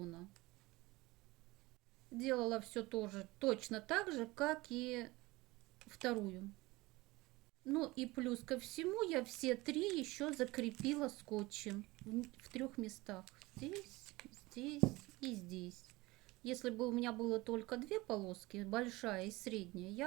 Делала все тоже точно так же, как и вторую. Ну и плюс ко всему я все три еще закрепила скотчем в трех местах. Здесь, здесь и здесь. Если бы у меня было только две полоски, большая и средняя,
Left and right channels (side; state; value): left; quieter; 21.2 dB